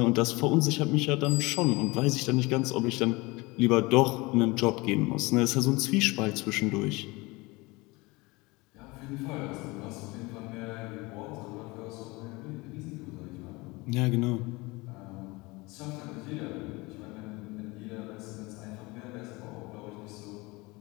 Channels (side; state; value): right; quieter; 23.8 dB